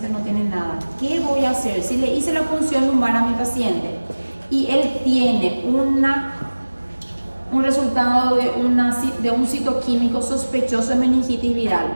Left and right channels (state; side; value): inverted; both; correlation -1.00